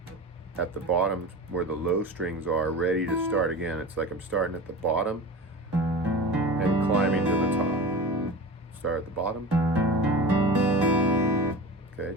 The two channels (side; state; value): both; normal; correlation 0.32